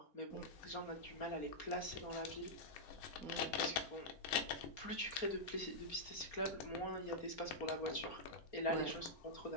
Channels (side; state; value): right; late; 4.3 ms